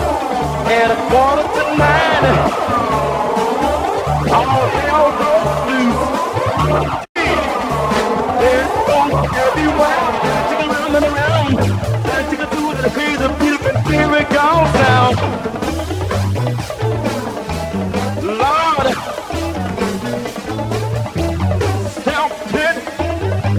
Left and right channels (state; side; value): identical; both; correlation 1.00